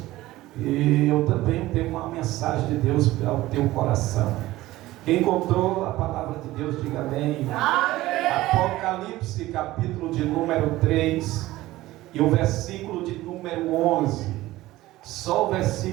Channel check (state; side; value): quieter; left; 17.0 dB